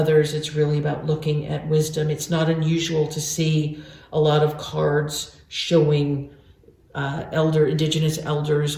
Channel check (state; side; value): identical; both; correlation 1.00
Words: it's really about looking at wisdom. It's not unusual to see a lot of cards showing indigenous elders